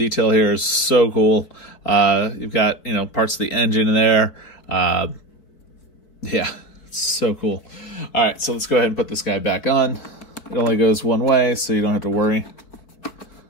here is so cool. You've got, you know, parts of the engine in there. Yeah, it's so cool. All right, so let's go ahead and put this guy back on. It only goes one way, so you don't have to worry.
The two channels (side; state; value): right; late; 4.9 ms